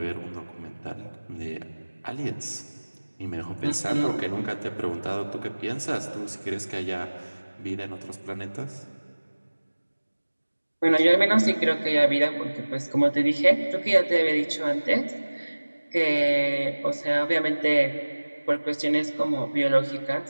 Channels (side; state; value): both; inverted; correlation -1.00